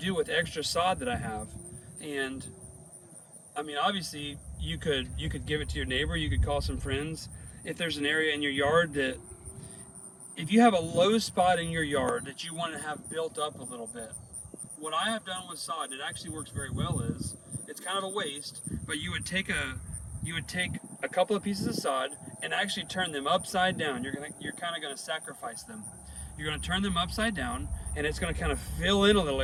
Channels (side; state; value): both; identical; correlation 1.00